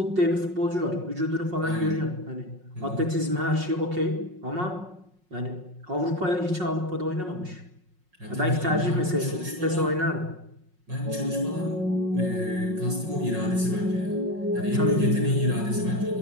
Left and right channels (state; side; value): late; left; 5.5 ms